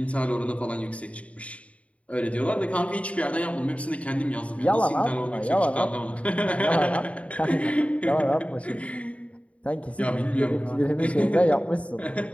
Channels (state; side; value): late; right; 0.065 ms